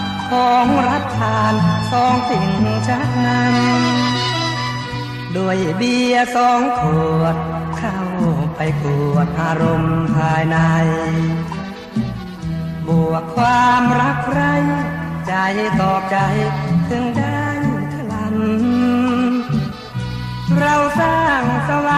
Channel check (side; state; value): both; identical; correlation 1.00